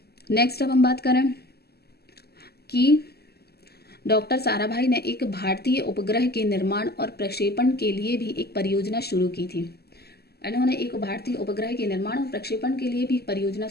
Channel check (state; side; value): late; right; 0.46 ms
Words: नेक्स्ट अब हम बात करें कि डॉक्टर साराभाई ने एक भारतीय उपग्रह के निर्माण और प्रक्षेपण के लिए भी एक परियोजना शुरू की थी। इन्होंने एक भारतीय उपग्रह के निर्माण और प्रक्षेपण के लिए भी परियोजना